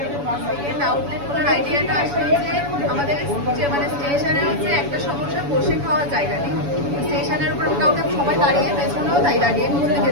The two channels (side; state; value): left; late; 7.0 ms